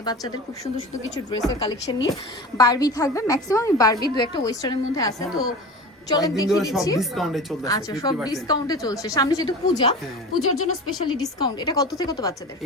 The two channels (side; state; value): both; normal; correlation 0.33